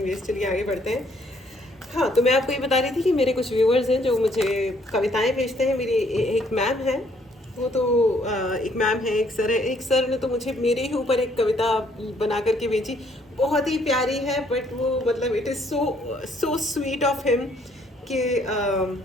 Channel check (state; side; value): normal; both; correlation 0.66